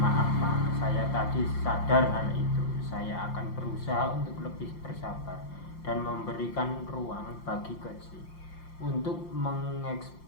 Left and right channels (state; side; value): late; right; 5.7 ms